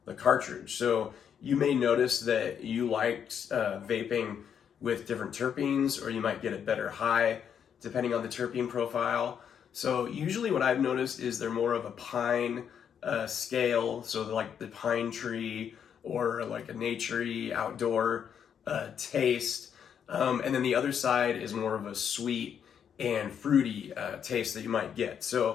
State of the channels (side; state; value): right; quieter; 8.1 dB